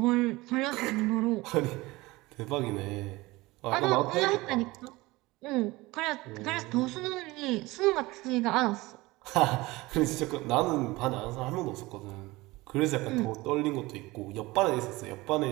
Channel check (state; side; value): quieter; left; 20.8 dB